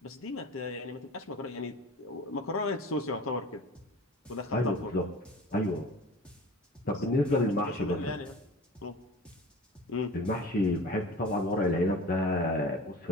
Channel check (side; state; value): both; normal; correlation 0.39